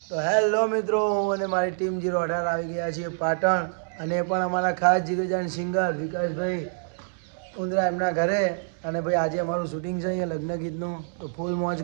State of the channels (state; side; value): silent; left; digital silence